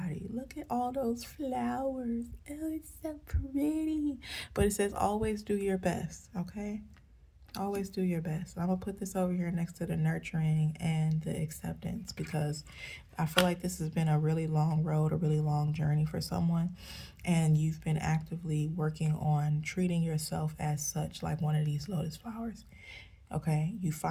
Look at all those flowers. Oh, it's so pretty. But it says always do your best. Okay, always do your best. I'm gonna put this over here next to the nurturing and the acceptance, because I feel like this has been a really long road, a really long journey for someone, and you've been actively working on treating yourself as such, like one of these lotus flowers. Okay, you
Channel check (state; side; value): identical; both; correlation 1.00